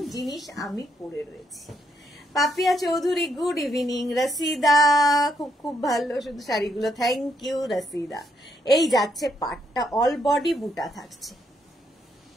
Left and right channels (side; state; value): both; normal; correlation 0.75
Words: জিনিস আমি পরে রয়েছি। Papiya Chowdhury good evening. রসিদা খুব খুব ভালো শুধু শাড়িগুলো, থ্যাংক ইউ রসিদা। এই যাচ্ছে পাটটা, অল বডি বুটা থাকছে।